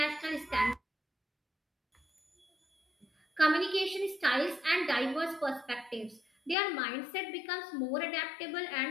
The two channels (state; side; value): drops out; right; at 6.6 s